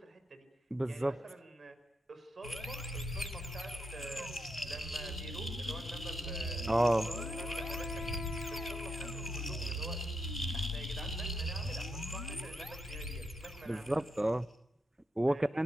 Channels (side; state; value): both; normal; correlation 0.83